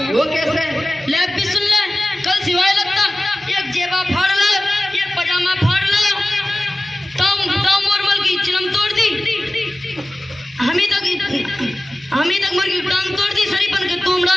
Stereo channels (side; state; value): both; normal; correlation 0.96